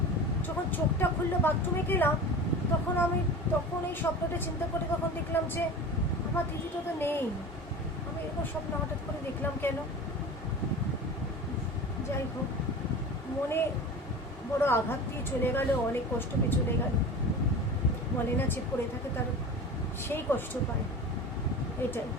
যখন চোখটা খুললো বাথরুমে গেলাম, তখন আমি তখন এই স্বপ্নটা চিন্তা করে তখন দেখলাম যে আমার দিদিটা তো নেই। আমি এরকম স্বপ্ন হঠাৎ করে দেখলাম কেন? যাই হোক, মনে বড় আঘাত দিয়ে চলে গেল, অনেক কষ্ট পেয়ে চলে গেল। বলে না যে পড়ে থাকে তার সেই কষ্ট পায়, এটাই।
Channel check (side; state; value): both; normal; correlation 0.33